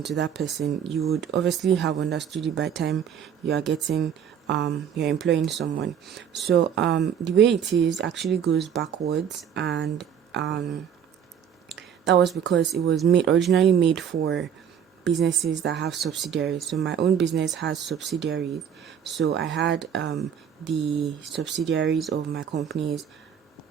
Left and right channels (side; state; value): left; quieter; 8.4 dB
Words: to that person. You would obviously have understood it by the time you are getting you're employing someone. So the way it is actually goes backwards, and that was because it was originally made for businesses that have subsidiaries. So my own business has subsidiaries. So I had the subsidiaries of my companies